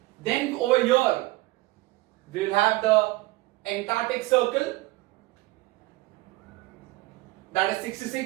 Then over here, we will have the Antarctic Circle, that is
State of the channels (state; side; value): quieter; left; 20.3 dB